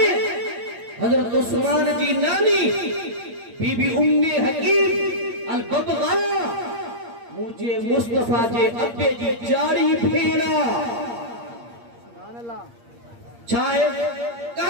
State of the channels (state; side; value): late; left; 8.6 ms